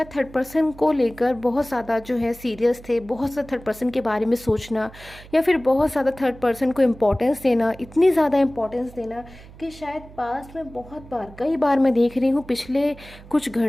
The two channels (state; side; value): noise; right; hum, 19 dB below the sound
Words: थर्ड पर्सन को लेकर बहुत ज़्यादा जो है सीरियस थे, बहुत ज़्यादा थर्ड पर्सन के बारे में सोचना, या फिर बहुत ज़्यादा थर्ड पर्सन को इम्पोर्टेंस देना, इतनी ज़्यादा इम्पोर्टेंस देना कि शायद पास्ट में बहुत बार, कई बार मैं देख रही हूँ पिछले कुछ